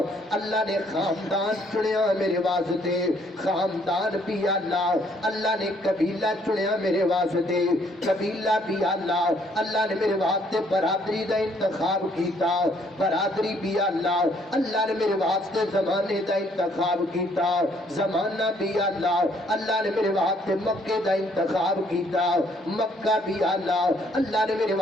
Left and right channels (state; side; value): normal; both; correlation 0.65